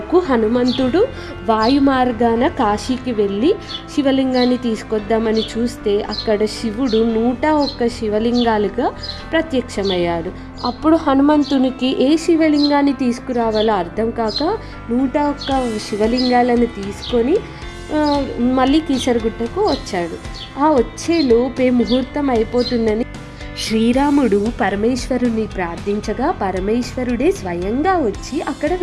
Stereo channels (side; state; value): both; identical; correlation 1.00